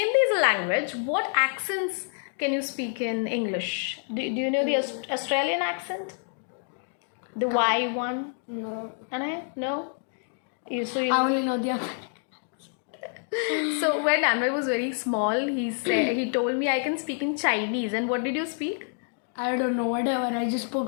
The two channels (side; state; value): right; silent; 60 dB below the other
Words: is a language. What accents can you speak in English? Do you know the Australian accent? The Y one? No. No? You I only know the other. So when Anvay was very small, he told me I can speak in Chinese. And what did you speak? I don't know, whatever. I just spoke